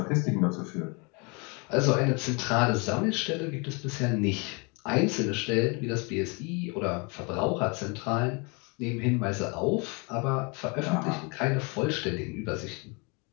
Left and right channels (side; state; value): right; quieter; 31.1 dB